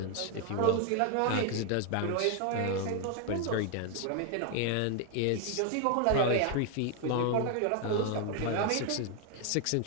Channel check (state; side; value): different; both; correlation 0.00